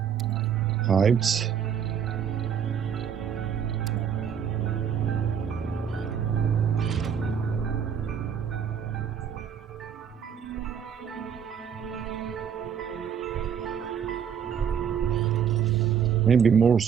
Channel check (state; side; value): quieter; left; 7.8 dB